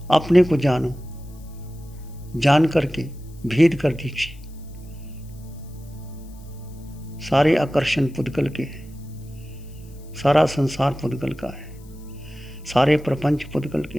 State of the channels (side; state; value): left; noise; hiss, 27 dB below the sound